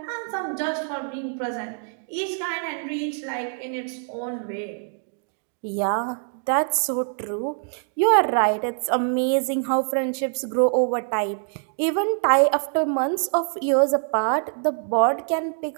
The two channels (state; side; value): silent; left; 62 dB below the other